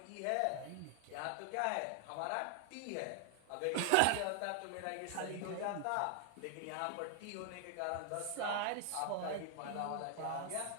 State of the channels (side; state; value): both; different; correlation 0.00